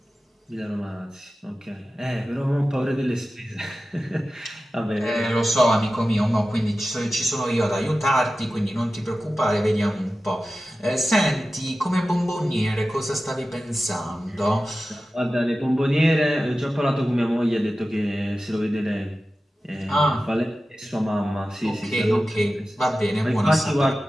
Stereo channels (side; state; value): both; normal; correlation 0.94